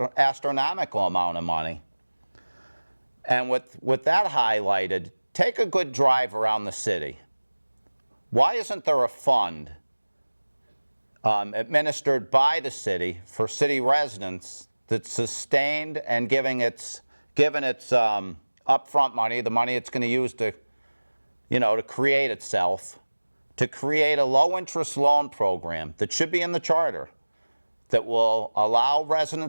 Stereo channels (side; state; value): both; inverted; correlation -1.00